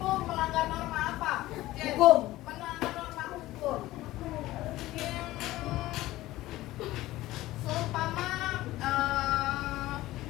melanggar norma apa? Jen? Hukum. Melanggar norma hukum. Seumpama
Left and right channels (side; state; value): right; quieter; 16.8 dB